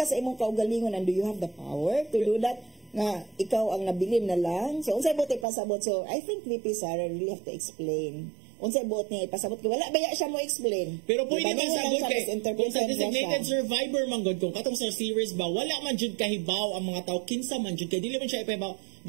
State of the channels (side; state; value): left; drops out; at 5.5 s